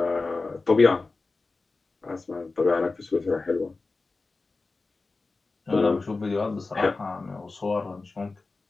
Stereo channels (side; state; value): right; quieter; 3.7 dB